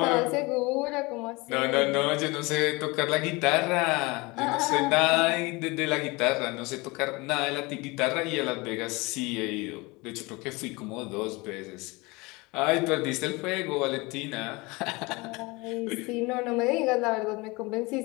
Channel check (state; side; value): quieter; right; 24.6 dB